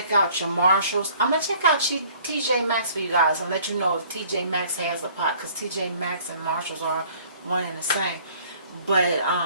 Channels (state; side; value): inverted; both; correlation -0.55